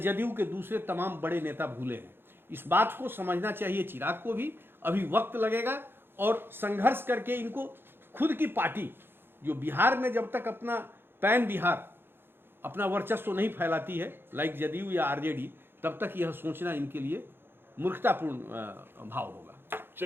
के दूसरे तमाम बड़े नेता भूले हैं। इस बात को समझना चाहिए चिराग को भी। अभी वक्त लगेगा और संघर्ष करके इनको खुद की पार्टी, जो बिहार में जब तक अपना पैन बिहार अपना वर्चस्व नहीं फैलाती है, लाइक जदयू या आरजेडी, तब तक यह सोचना इनके लिए मूर्खतापूर्ण भाव होगा।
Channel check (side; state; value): left; late; 0.10 ms